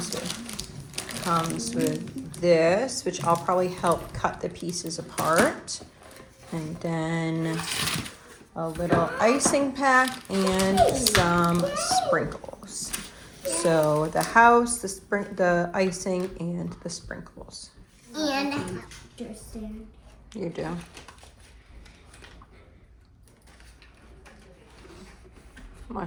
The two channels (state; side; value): identical; both; correlation 1.00